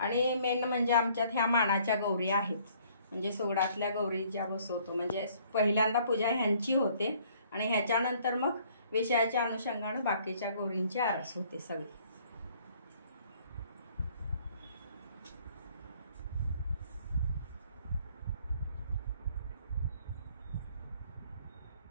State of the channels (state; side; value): inverted; both; correlation -0.60